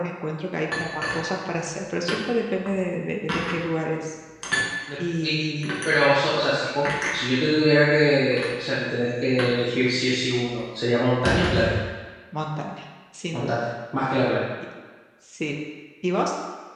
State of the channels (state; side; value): identical; both; correlation 1.00